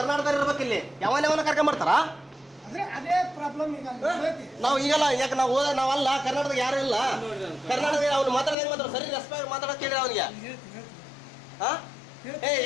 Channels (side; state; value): right; drops out; at 8.6 s